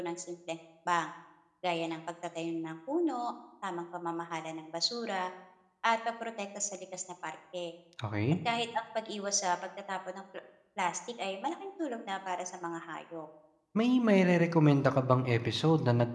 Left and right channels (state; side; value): identical; both; correlation 1.00